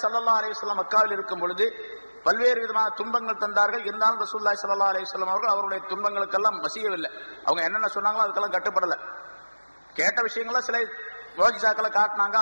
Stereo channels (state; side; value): inverted; both; correlation -1.00